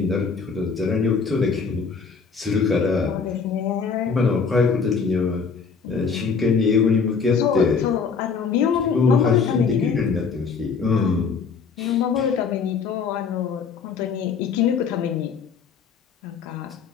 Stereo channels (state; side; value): quieter; right; 5.6 dB